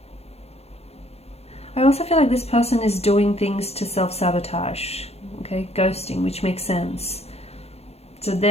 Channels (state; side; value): late; right; 0.30 ms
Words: I also feel like this person is doing things to self-sabotage, okay, ghosting, which makes sense. So